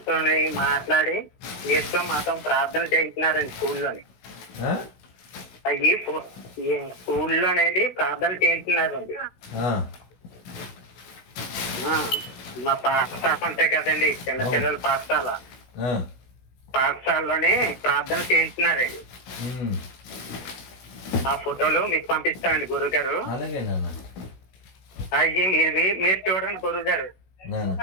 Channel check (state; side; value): late; right; 16 ms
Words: మాట్లాడి ఏసుతో మాత్రం ప్రార్థనలు చేయించినారండి స్కూల్లోని. అవి స్కూల్లోనేది ప్రార్థనలు చేయించినారండి. మా పాఠశాల అంతే కదండి, చిన్నపిల్లల పాఠశాలలోనే ప్రార్థన చేయించినారండి. ఆ ఫోటోలు మీకు పంపిస్తామండి గురుగారు. అవి మీరు చూడండి గురుగారు.